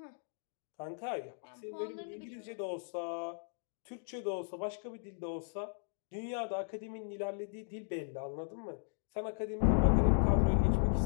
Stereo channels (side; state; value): right; silent; digital silence